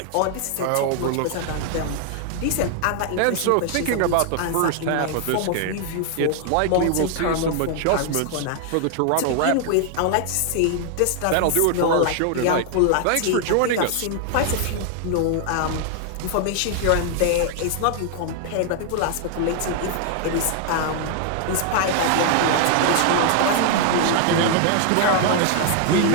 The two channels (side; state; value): both; different; correlation 0.00